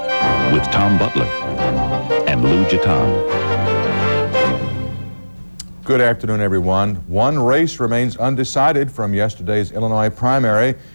with Tom Butler and Lou Gitan. Good afternoon, everyone. One race remains undecided from yesterday's Illinois primary.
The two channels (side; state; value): both; inverted; correlation -1.00